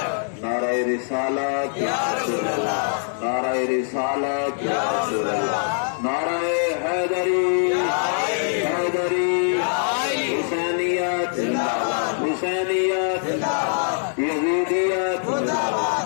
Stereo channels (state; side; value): silent; right; digital silence